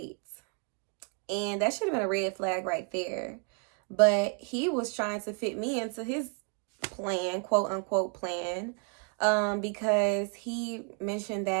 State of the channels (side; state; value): left; quieter; 38.3 dB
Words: And that should have been a red flag right there. But he was trying to fit me into his plan, quote unquote plan, because he mentioned